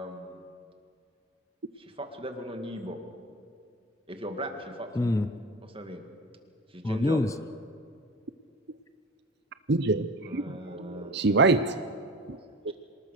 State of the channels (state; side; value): normal; both; correlation 0.33